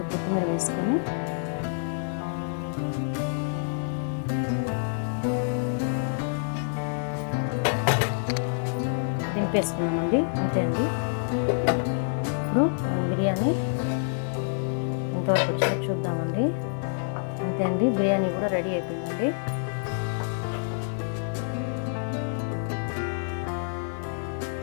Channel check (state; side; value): silent; right; digital silence